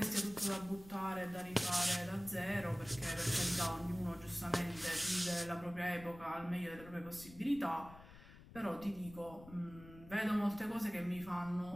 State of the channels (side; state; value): left; noise; rumble, 18 dB below the sound